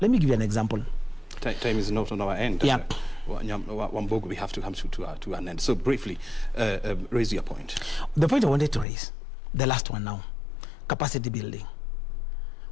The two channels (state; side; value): drops out; right; at 8.8 s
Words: let me give you an example. Time is not on our end. Yeah. Wambogo, we have to come to an end. So briefly, raise your point. The point I wanted to raise, the last one now, capacity building.